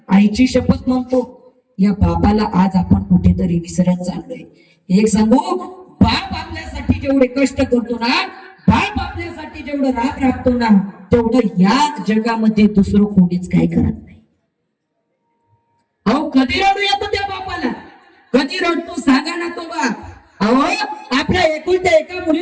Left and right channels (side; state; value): both; identical; correlation 1.00